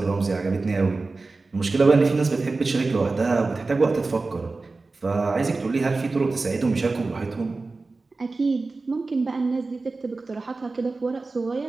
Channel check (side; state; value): left; quieter; 3.7 dB